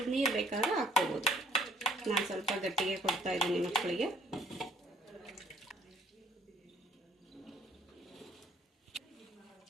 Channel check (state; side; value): normal; both; correlation 0.61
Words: ನೀರು ಬೇಕಾದ್ರೆ ಹಾಕ್ಕೋಬೋದು. ನಾನು ಸ್ವಲ್ಪ ಗಟ್ಟಿಗೆ ಕೊಡ್ತಾ ಇದ್ದೀನಿ ಮಕ್ಕಳಿಗೆ.